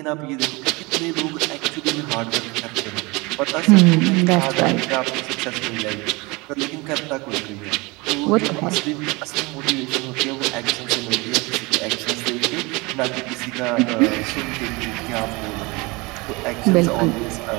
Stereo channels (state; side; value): quieter; left; 25.0 dB